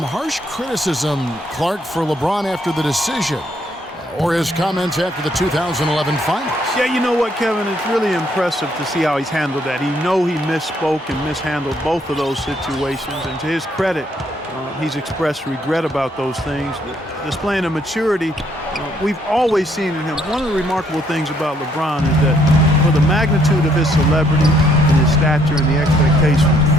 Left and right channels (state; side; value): normal; both; correlation 0.69